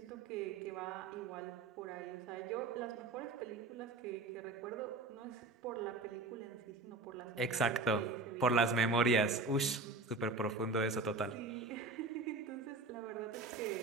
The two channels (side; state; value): left; quieter; 3.5 dB